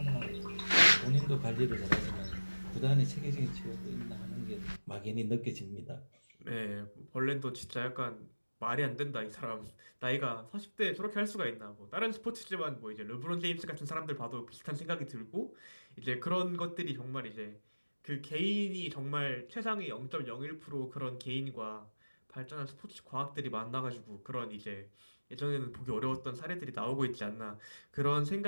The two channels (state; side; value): inverted; both; correlation -1.00